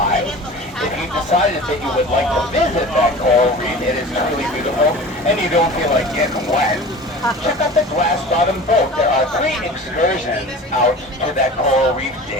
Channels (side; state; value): both; normal; correlation 0.38